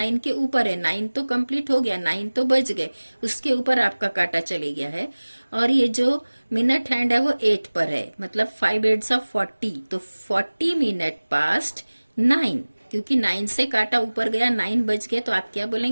के ऊपर है. 9 तो कंप्लीट हो गया, 9 तो बज गए, उसके ऊपर आपका काटा चले गया है. और ये जो मिनट हैंड है वो 8 पर है, मतलब 5 8s of 40. तो 40 मिनट पास्ट 9, क्योंकि 9 से काटा ऊपर गया, 9 बज गए, तो आप क्या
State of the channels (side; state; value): both; inverted; correlation -1.00